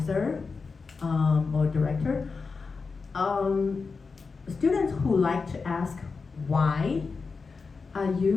or director. Students who like to ask why are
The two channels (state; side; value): quieter; right; 4.7 dB